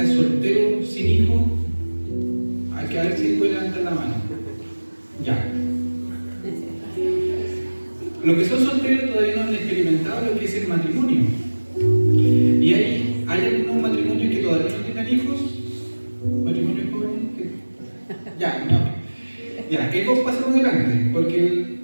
soltero, sin hijo? Hay que ver si puede levantar la mano. Ya. Los que son solteros todavía no han experimentado lo que es el matrimonio. Y hay algunos matrimonios que todavía no tengan hijos. ¿Matrimonios jóvenes? Ya, no. Ya, ¿qué cosa pasamos adelante? Porque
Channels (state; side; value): inverted; both; correlation -1.00